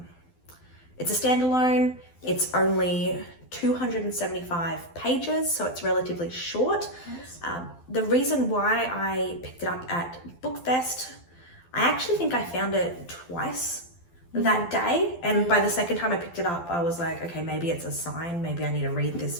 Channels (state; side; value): late; right; 12 ms